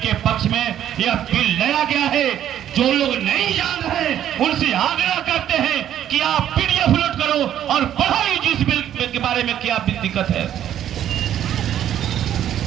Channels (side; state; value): left; quieter; 10.9 dB